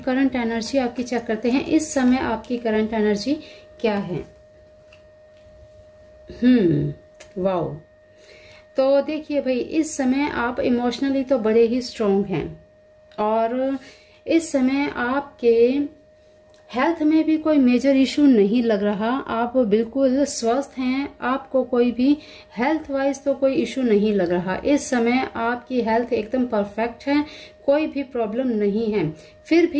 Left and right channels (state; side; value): identical; both; correlation 1.00